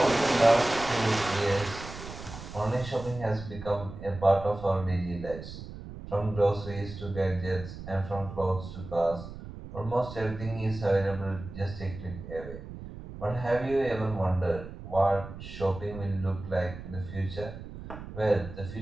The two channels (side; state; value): right; noise; rumble, 12 dB below the sound